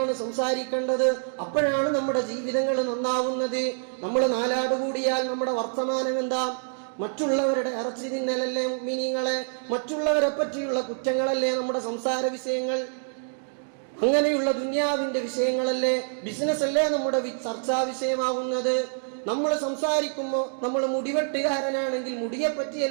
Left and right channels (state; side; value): silent; left; digital silence